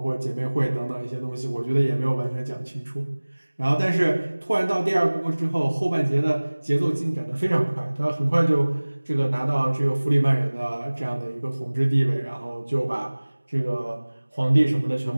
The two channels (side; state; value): both; inverted; correlation -1.00